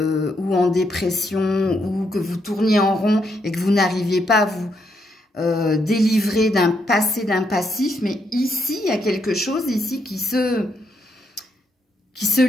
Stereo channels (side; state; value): both; normal; correlation 0.77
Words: ou en dépression ou que vous tourniez en rond et que vous n'arriviez pas à vous délivrer d'un passé, d'un passif. Mais ici, il y a quelque chose ici qui se